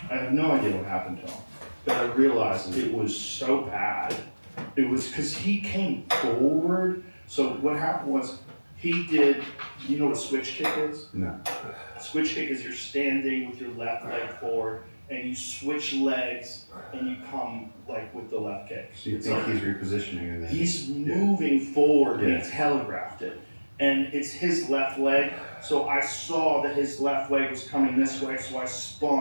I have no idea what happened to him, but I realized it was so bad. It was because he came forward. So what happened was he did. You know what a switch kick is? No. A switch kick is you're standing with your left leg forward, and you switch legs, and you come like with the left kick. So you think he's repositioning and then he's moving forward, and he telegraphed it. And it's his left leg, so I saw that his left leg was coming this way, so I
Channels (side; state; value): both; inverted; correlation -1.00